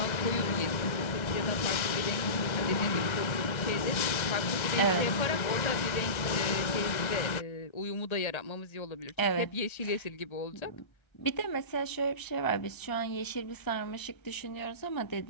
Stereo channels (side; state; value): right; late; 1.3 ms